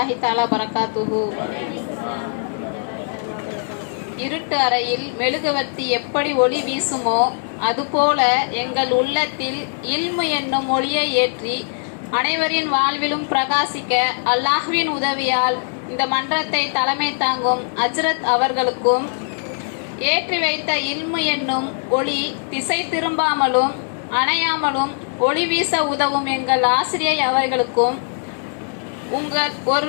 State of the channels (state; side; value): silent; right; digital silence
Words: தஆலா பரகாத்துஹு. இருட்டு அறையில் மெழுகுவர்த்தி எப்படி ஒளி வீசுமோ அதுபோல எங்கள் உள்ளத்தில் இல்மு என்னும் ஒளியை ஏற்றி அனைவரின் வாழ்விலும் பிரகாசிக்க அல்லாஹ்வின் உதவியால் இந்த மன்றத்தை தலைமை தாங்கும் அஜ்ரத் அவர்களுக்கும், ஏற்றி வைத்த இல்மு என்னும் ஒளி திசை திரும்பாமலும் அணையாமலும் ஒளி வீச உதவும் எங்கள் ஆசிரியை அவர்களுக்கும், உங்கள்